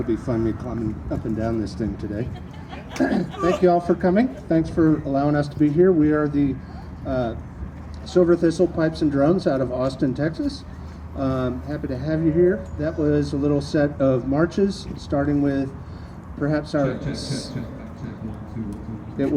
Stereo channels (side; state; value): both; identical; correlation 1.00